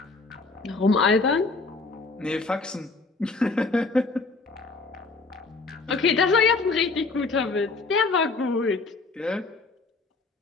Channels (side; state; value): right; quieter; 3.9 dB